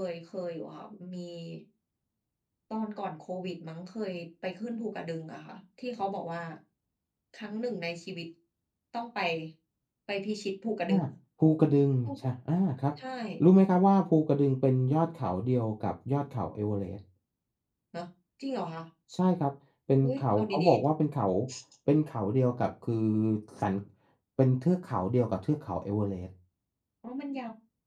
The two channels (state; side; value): identical; both; correlation 1.00